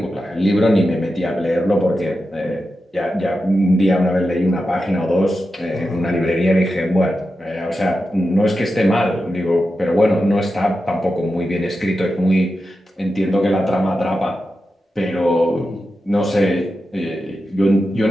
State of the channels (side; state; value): both; normal; correlation 0.90